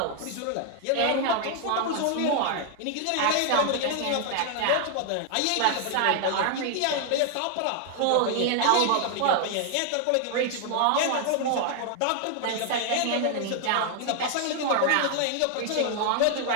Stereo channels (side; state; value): both; different; correlation 0.00